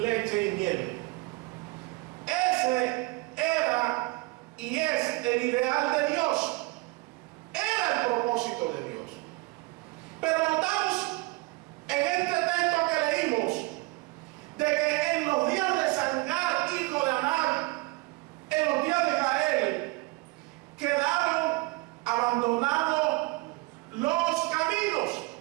y miel. Ese era y es el ideal de Dios. Era el propósito de Dios. Pero notamos en este texto que leímos de que en los días de Sangar, hijo de Anar, en los días de Jael, quedaron abandonados los caminos,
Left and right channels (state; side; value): quieter; left; 24.2 dB